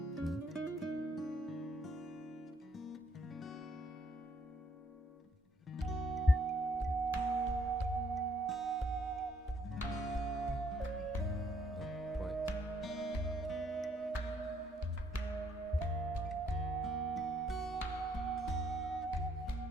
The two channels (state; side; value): normal; both; correlation 0.68